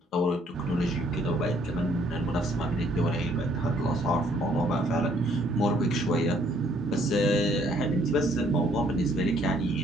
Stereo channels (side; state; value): both; normal; correlation 0.64